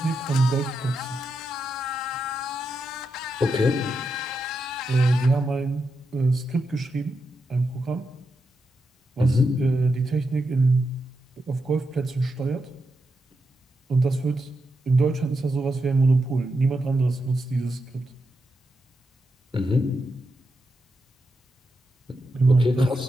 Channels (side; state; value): both; normal; correlation 0.85